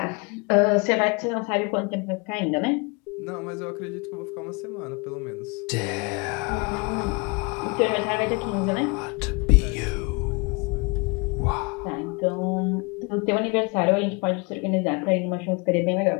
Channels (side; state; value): right; quieter; 29.8 dB